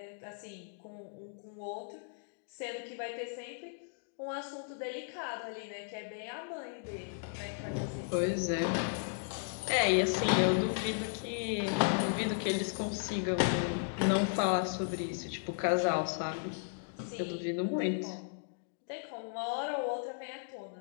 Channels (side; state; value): right; silent; digital silence